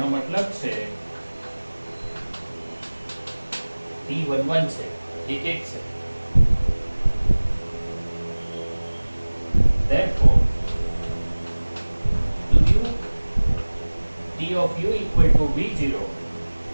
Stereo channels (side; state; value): both; inverted; correlation -1.00